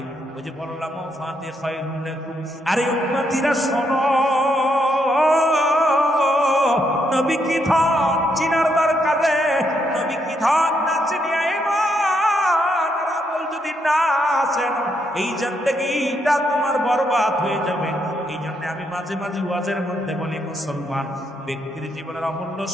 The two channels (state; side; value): normal; both; correlation 0.77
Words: ওই যে বললাম ফাতে খায়রুন লাকুম। আরে উম্মতিরা শোনো, নবী কি ধন চিনার দরকারে, নবী কি ধন না চিনিয়া ঈমান আর আমল যদি না আসেন এই জিন্দেগিটা তোমার বরবাদ হয়ে যাবে। এই জন্য আমি মাঝে মাঝে ওয়াজের মধ্যে বলি মুসলমান ব্যক্তির জীবনের অমূল্য